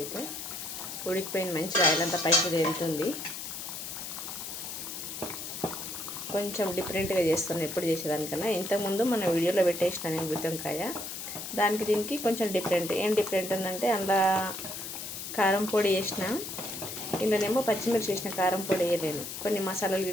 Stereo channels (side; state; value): left; noise; hiss, 7 dB below the sound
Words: ఉడికిపోయింది, మంచిగా ఆయిల్ అంతా పైకి తేలుతుంది. కొంచెం డిఫరెంట్గా చేస్తున్నాను ఎప్పుడు చేసేదానికన్నా. ఇంతకుముందు మన వీడియోలో పెట్టేసిన నేను గుత్తొంకాయ, దానికి దీనికి కొంచెం డిఫరెంట్. ఏం డిఫరెంట్ ఉందంటే అందులో కారం పొడి వేసిన, ఇందులోనేమో పచ్చిమిర్చి వేసిన, కారం పొడి వేయలేను. కొన్ని మసాలాలు